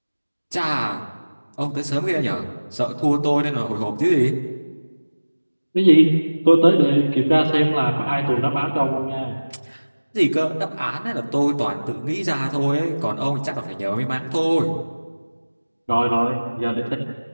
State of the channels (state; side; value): inverted; both; correlation -1.00